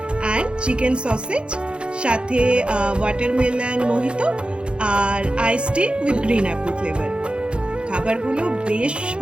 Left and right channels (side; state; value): left; late; 0.056 ms